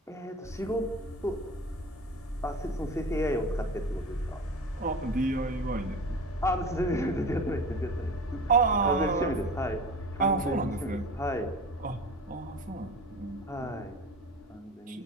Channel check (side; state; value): both; normal; correlation 0.36